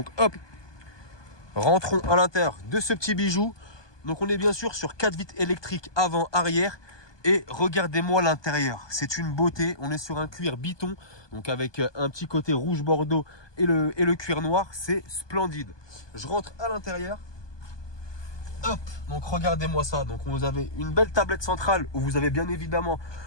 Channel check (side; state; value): right; late; 1.2 ms